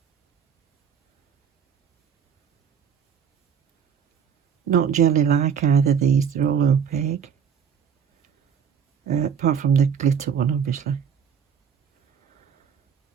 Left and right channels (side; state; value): left; quieter; 7.5 dB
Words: Not jelly like either these, they're all opaque. Apart from the glitter one, obviously.